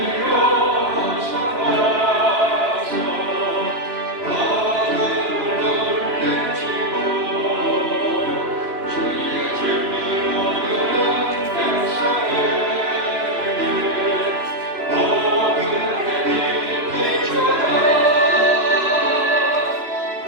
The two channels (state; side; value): late; left; 3.0 ms